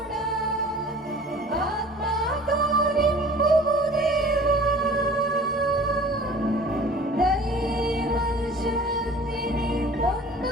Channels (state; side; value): normal; both; correlation 0.46